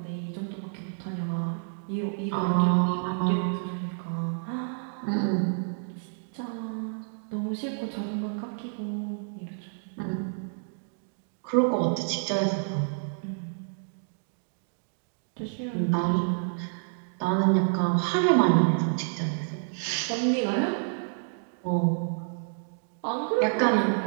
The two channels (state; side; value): silent; left; digital silence